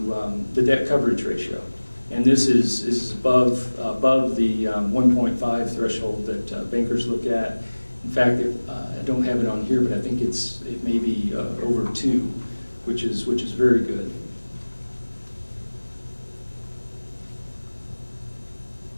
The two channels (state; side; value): inverted; both; correlation -1.00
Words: debt coverage ratio. And this is above the 1.5 threshold that bankers look at. In fact, I don't have it on here, but I think it may be over 2, which is very good.